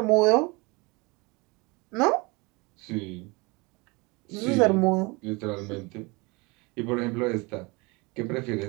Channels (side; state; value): left; quieter; 26.5 dB